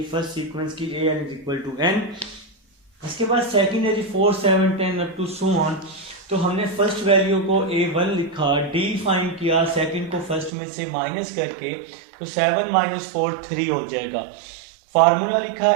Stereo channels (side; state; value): left; drops out; at 10.5 s